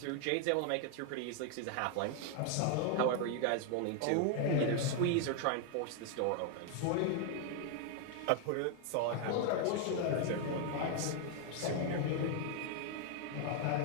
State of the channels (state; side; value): different; both; correlation 0.00